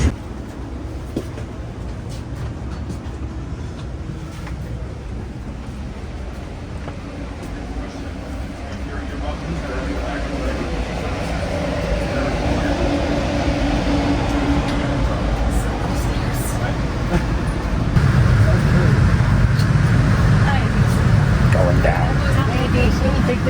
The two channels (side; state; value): both; identical; correlation 1.00